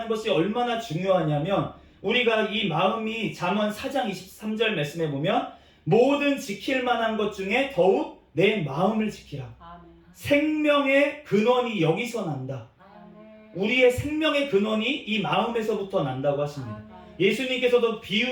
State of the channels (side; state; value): both; identical; correlation 1.00